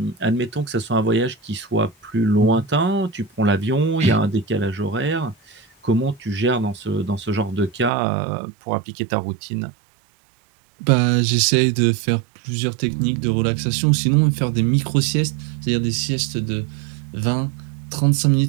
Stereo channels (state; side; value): drops out; left; at 7.9 s